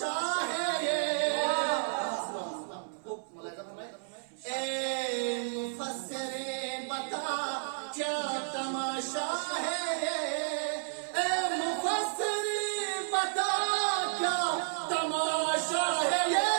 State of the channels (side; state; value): left; silent; 57 dB below the other